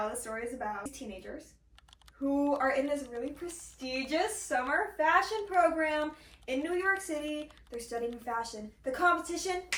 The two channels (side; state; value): both; identical; correlation 1.00